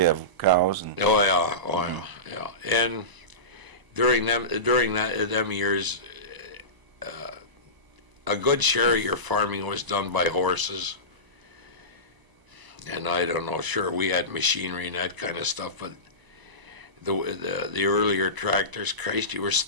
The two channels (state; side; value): late; left; 1.0 ms